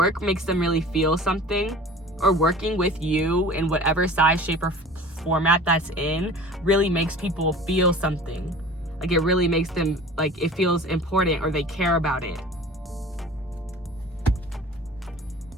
makes them really feel something, or working with you in whatever size, shape, or format that's in really makes people feel something. Like, it really makes them, like, it feels important or they care about it.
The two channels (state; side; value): normal; both; correlation 0.41